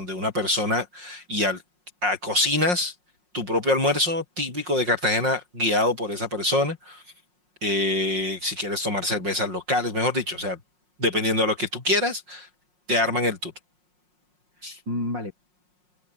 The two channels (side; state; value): left; late; 5.5 ms